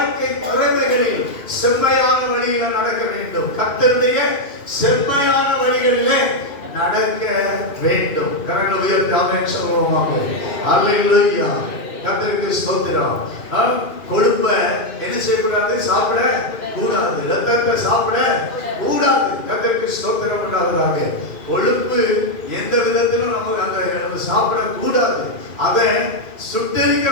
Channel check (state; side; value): late; right; 2.5 ms